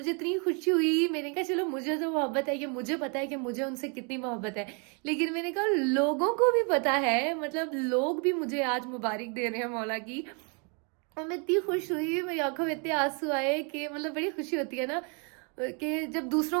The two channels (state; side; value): quieter; left; 36.1 dB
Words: इतनी खुशी हुई, मैंने कहा चलो मुझे तो मोहब्बत है, ये मुझे पता है कि मुझे उनसे कितनी मोहब्बत है, लेकिन मैंने कहा लोगों को भी पता है, मतलब लोग भी मुझे आज मुबारक दे रहे हैं मौला की। और मैं इतनी खुश हुई, मेरी आंखों में इतने आंसू आए कि मतलब बड़ी खुशी होती है ना कि जब